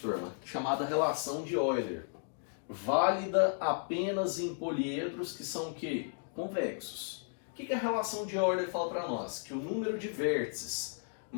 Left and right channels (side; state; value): right; silent; digital silence